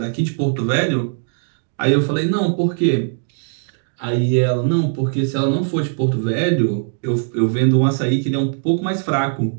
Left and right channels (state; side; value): silent; left; digital silence